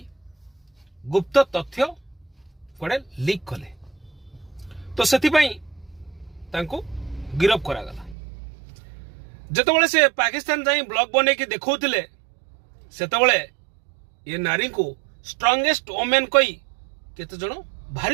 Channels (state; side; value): drops out; left; at 8.2 s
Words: गुप्त तथ्य कड़े लीक कले तो से गिरफ करागला। जिते से पाकिस्तान जाई ब्लॉग बने की देखौतिले सेतबेले ये नारी को स्ट्रांगेस्ट वोमेन कही केते जण